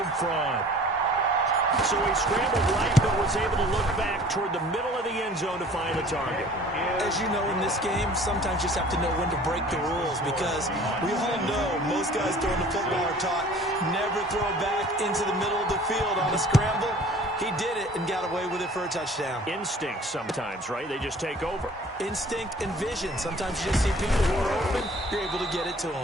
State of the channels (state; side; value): normal; both; correlation 0.49